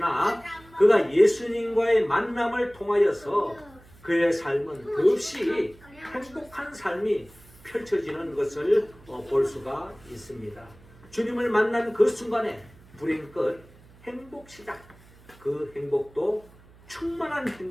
그가 예수님과의 만남을 통하여서 그의 삶은 더없이 행복한 삶이 펼쳐지는 것을 볼 수가 있습니다. 주님을 만난 그 순간에 불행 끝 행복 시작. 그 행복도 충만한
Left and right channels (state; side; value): noise; right; hum, 25 dB below the sound